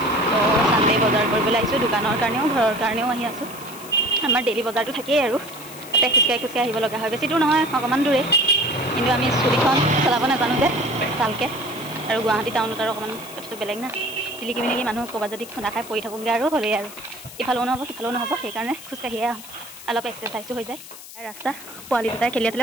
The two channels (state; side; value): noise; left; hiss, 16 dB below the sound